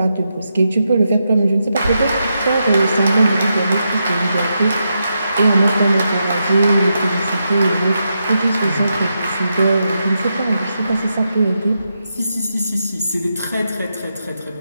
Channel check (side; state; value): both; inverted; correlation -0.85